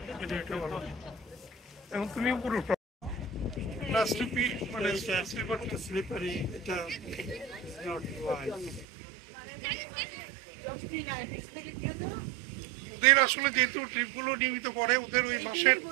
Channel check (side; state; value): left; drops out; at 8.8 s